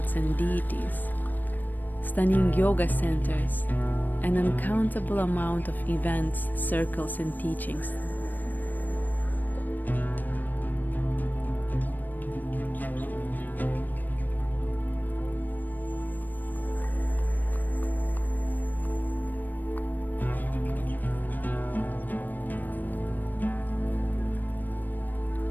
and deities, stunning yoga centers, an uncountable amount of events, circles, and teachings.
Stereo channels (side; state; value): right; late; 0.088 ms